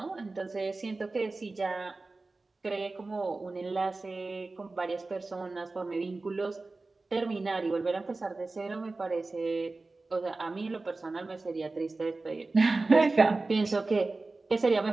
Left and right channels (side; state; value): left; quieter; 3.4 dB